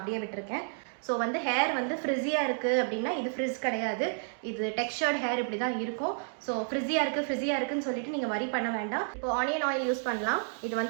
விட்டுருக்கேன். ஸோ வந்து ஹேர் வந்து ஃப்ரிஸியாக இருக்குது அப்படின்னா இது ஃப்ரிஸ் கிடையாது, இது டெக்ஸ்சர்ட் ஹேர் இப்படி தான் இருக்கும். ஸோ ஃப்ரிஸியாக இருக்குன்னு சொல்லிட்டு நீங்கள் வரி பண்ண வேண்டாம். இப்போ ஆனியன் ஆயில் யூஸ் பண்ணலாம். இது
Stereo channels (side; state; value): left; silent; 57 dB below the other